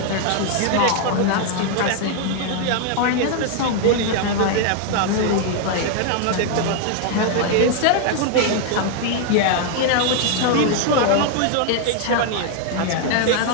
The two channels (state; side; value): different; both; correlation 0.00